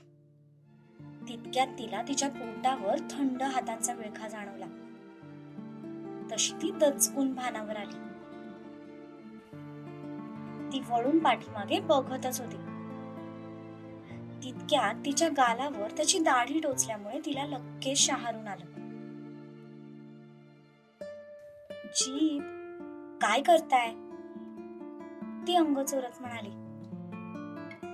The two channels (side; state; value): both; identical; correlation 1.00